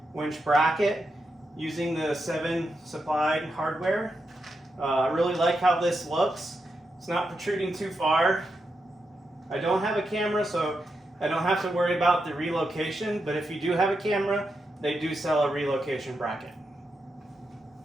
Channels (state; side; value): normal; both; correlation 0.85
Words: winch bracket using the 7 supplied hardware. I really like how this looks. It's not protruding too far. I don't have a camera, so I don't have to worry about the relocation, but if you do have a camera, they do sell a relocation bracket.